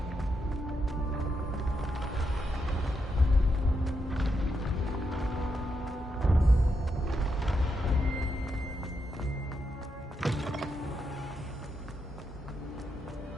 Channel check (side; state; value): both; normal; correlation 0.82